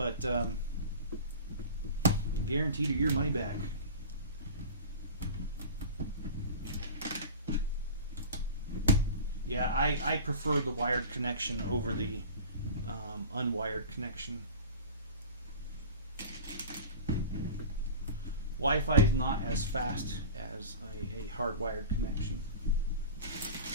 guaranteed or your money back. Yeah, I prefer the wired connection over the unwired connection. Wi-Fi is not as fast as a hardwired connection.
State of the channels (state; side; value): inverted; both; correlation -0.33